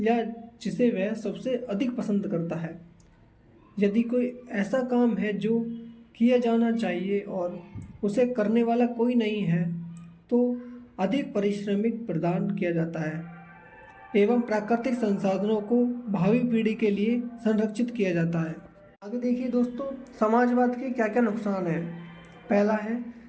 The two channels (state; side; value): identical; both; correlation 1.00